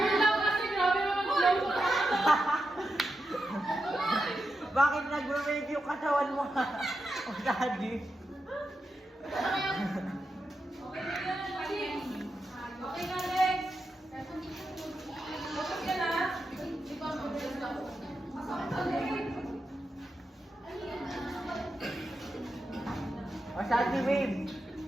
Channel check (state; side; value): normal; both; correlation 0.88